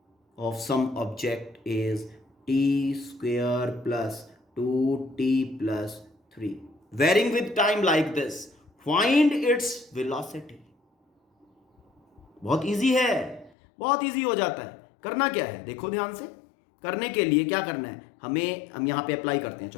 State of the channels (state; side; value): drops out; right; at 13.5 s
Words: of some object is T square plus 2t plus 3, varying with time like this. Find its velocity. बहुत इजी है, बहुत इजी हो जाता है. करना क्या है, देखो ध्यान से. करने के लिए क्या करना है, हम यहां पे अप्लाई करते हैं.